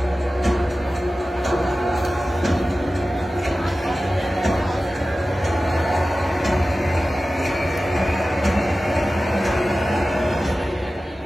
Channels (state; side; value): normal; both; correlation 0.95